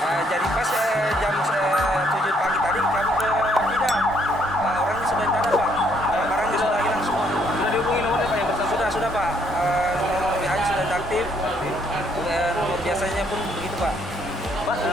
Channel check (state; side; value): normal; both; correlation 0.69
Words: Jadi pas jam 7 pagi tadi kami ke Bidang, orangnya sudah tidak ada Pak. Barangnya sudah hilang semua. Sudah dihubungi nomornya Pak yang bersangkutan? Sudah Pak. Nomor WA-nya sudah aktif. Nomor biasanya pun begitu Pak. Pak,